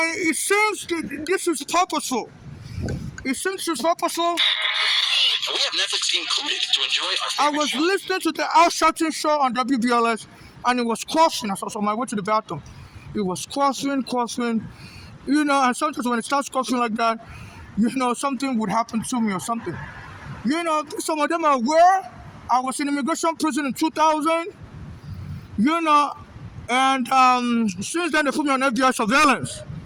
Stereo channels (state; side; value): identical; both; correlation 1.00